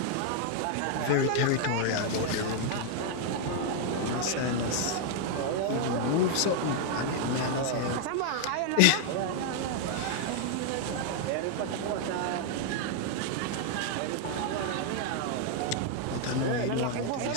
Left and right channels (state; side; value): different; both; correlation 0.00